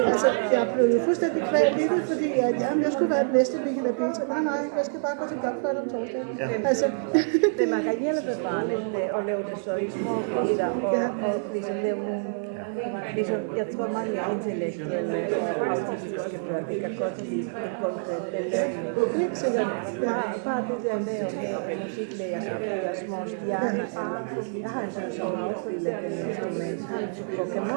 altså, jeg blev fuldstændig kvalt i det, fordi jeg skulle være den næste Michael og Peter. Nej, jeg skal bare gå til blokfløjte om torsdagen. Altså, det var rigtig befriende at lave det så ikke og ligesom lave ligesom, jeg tror mange intellektuelle artistiske folk, det kan godt lide en konkret belønning. ikke sikkert. Ja. Bare det der med at have musiklærer, så det er små stjerner. Jeg har sådan en sådan opspillet instrument, på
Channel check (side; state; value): left; silent; digital silence